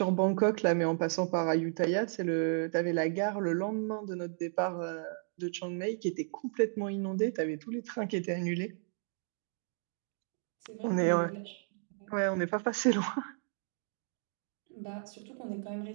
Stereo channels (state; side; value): silent; left; 55 dB below the other